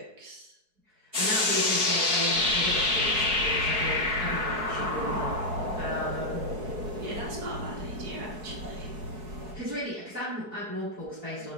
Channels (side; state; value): left; late; 4.7 ms